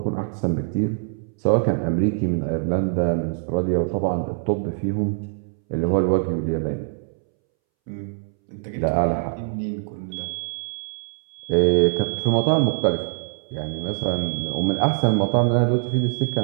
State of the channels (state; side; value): silent; left; 63 dB below the other